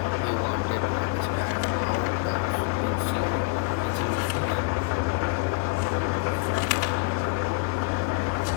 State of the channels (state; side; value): quieter; right; 25.9 dB